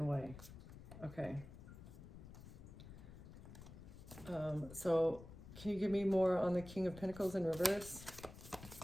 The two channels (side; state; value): left; noise; rumble, 14 dB below the sound